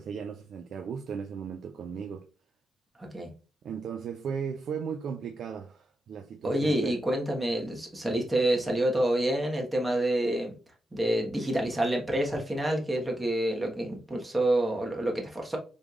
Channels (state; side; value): normal; both; correlation 0.87